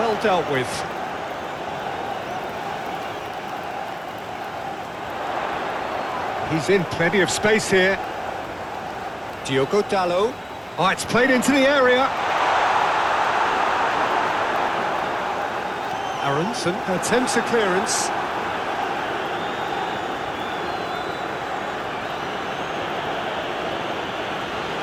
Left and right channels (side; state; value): both; identical; correlation 1.00